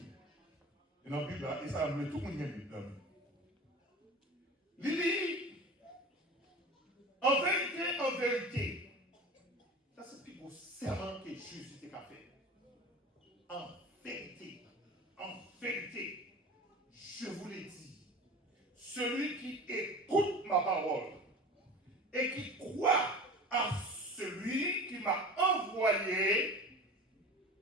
Et dans la Bible là, et ça a amené tout le monde qui a une Bible là. Il dit, en vérité, ça c'est le plus beau serment que Jésus t'a fait. En vérité, je vous l'ai dit, celui qui écoute ma parole et qui croit à celui qui m'a envoyé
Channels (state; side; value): normal; both; correlation 0.36